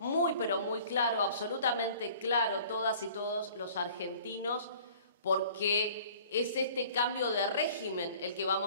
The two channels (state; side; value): inverted; both; correlation -0.50